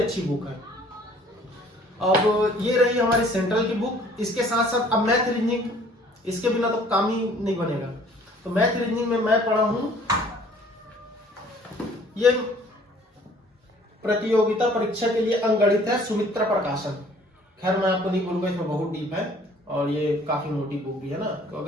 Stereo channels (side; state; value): both; normal; correlation 0.55